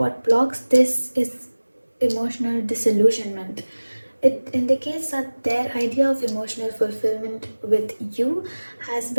blocks this is emotional disillusionment. It indicates that their idea of emotional fulfillment with you has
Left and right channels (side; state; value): both; inverted; correlation -1.00